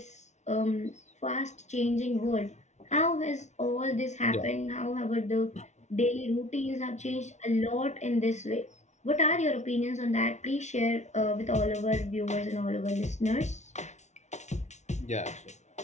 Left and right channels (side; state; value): right; late; 0.33 ms